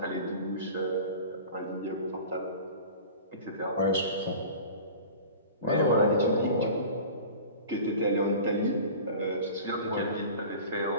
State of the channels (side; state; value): both; inverted; correlation -0.38